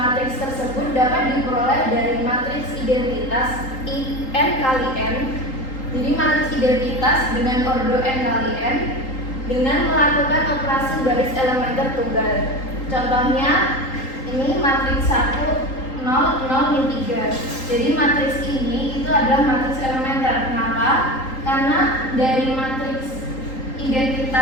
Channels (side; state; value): right; late; 3.8 ms